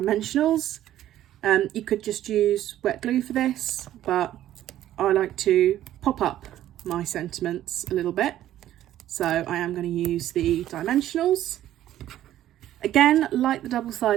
You could just use wet glue for this, but I like to pop up my sentiments a little bit. So I am going to use the dimensionals. Again, like the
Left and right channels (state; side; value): quieter; left; 12.7 dB